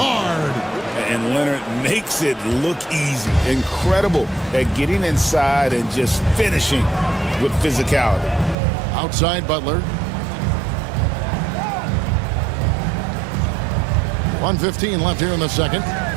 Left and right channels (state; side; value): drops out; left; at 8.6 s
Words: And Leonard makes it look easy. Incredible at getting inside and just finishing with physicality. Outside Butler. 1:15 left here in the second.